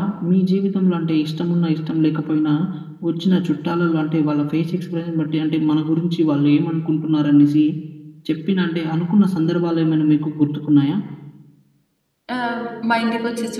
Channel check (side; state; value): both; identical; correlation 1.00